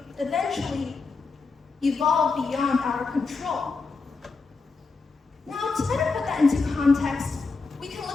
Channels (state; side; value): quieter; right; 4.3 dB